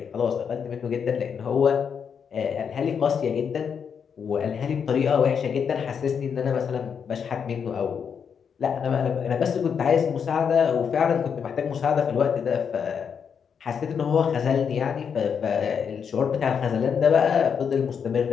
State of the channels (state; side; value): quieter; right; 6.9 dB